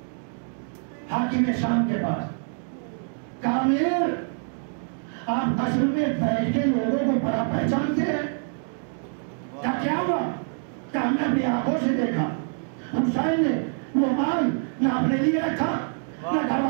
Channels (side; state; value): left; silent; 56 dB below the other